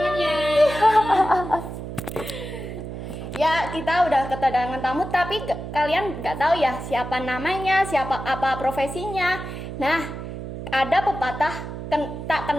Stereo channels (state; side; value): noise; right; hum, 8 dB below the sound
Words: Ya, kita udah kedatangan tamu, tapi kalian nggak tahu ya siapa namanya, siapa apa profesinya. Nah, ada pepatah tak